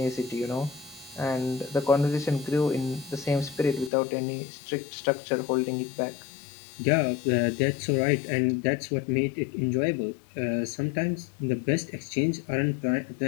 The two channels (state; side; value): drops out; right; at 3.9 s